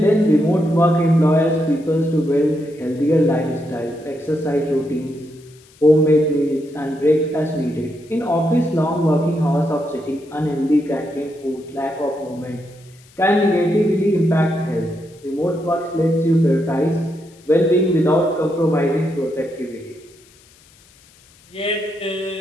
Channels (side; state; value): left; noise; hiss, 28 dB below the sound